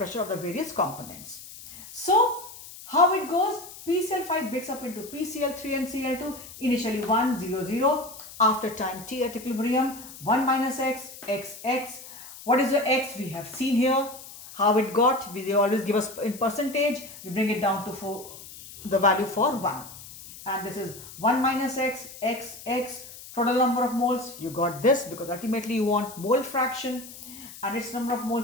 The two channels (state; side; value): noise; left; hiss, 16 dB below the sound